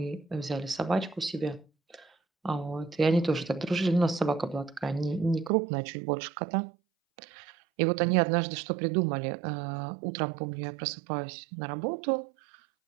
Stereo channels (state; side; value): drops out; left; at 5.5 s